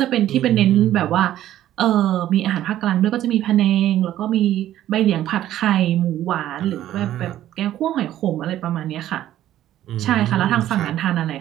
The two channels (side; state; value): left; quieter; 12.8 dB